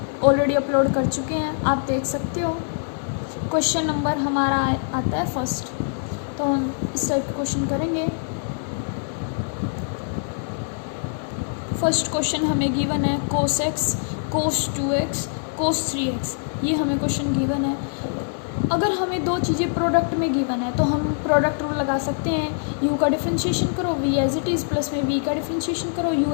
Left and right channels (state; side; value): silent; right; digital silence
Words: ऑलरेडी अपलोड कर चुके हैं, आप देख सकते हो। क्वेश्चन नंबर हमारा आता है फर्स्ट, तो हम इस टाइप के क्वेश्चन करेंगे। फर्स्ट क्वेश्चन हमें गिवन है cos x cos 2x cos 3x, ये हमें क्वेश्चन गिवन है। अगर हमें दो चीज़ें प्रोडक्ट में गिवन है तो हम प्रोडक्ट रूल लगा सकते हैं। u का डिफरेंशिएशन करो v as it is plus में v का डिफरेंशिएशन करो u